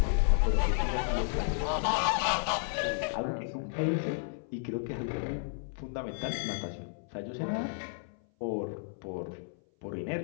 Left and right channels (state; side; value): silent; right; 56 dB below the other